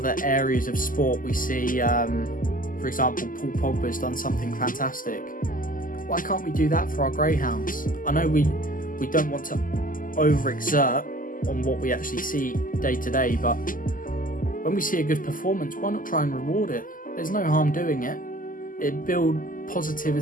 areas of sport, we see, for example, Paul Pogba's done something fantastic. Why can't we do that for our greyhounds? I know we don't want to overexert on what we actually see day to day, but when we see a good performance, why not try and reward it? There's no harm doing it. It builds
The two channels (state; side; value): late; right; 0.40 ms